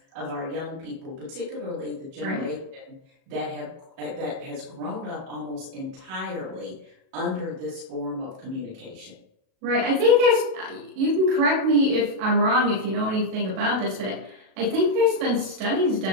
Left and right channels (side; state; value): left; late; 37 ms